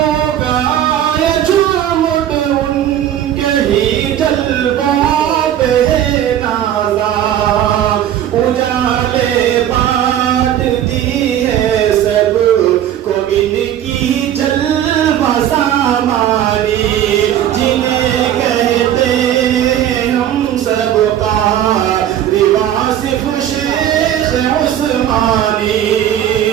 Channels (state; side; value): quieter; left; 10.9 dB